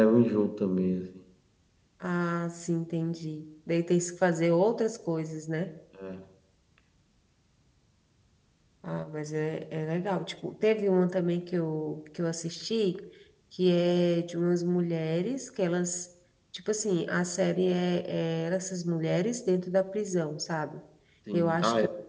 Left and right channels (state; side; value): identical; both; correlation 1.00